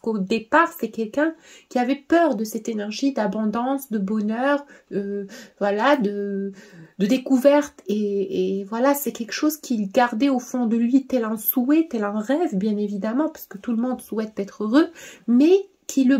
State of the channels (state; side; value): identical; both; correlation 1.00